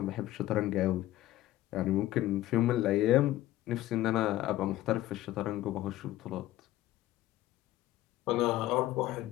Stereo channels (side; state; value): right; quieter; 15.0 dB